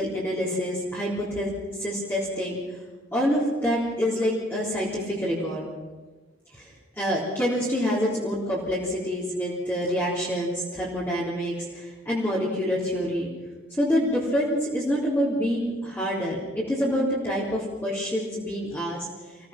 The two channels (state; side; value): normal; both; correlation 0.62